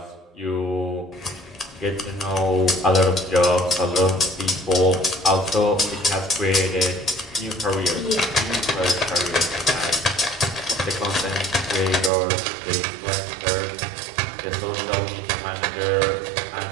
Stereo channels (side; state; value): left; drops out; at 12.1 s